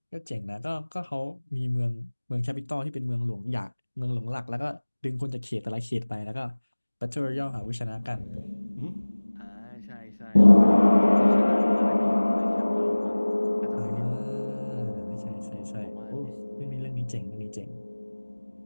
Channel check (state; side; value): inverted; both; correlation -1.00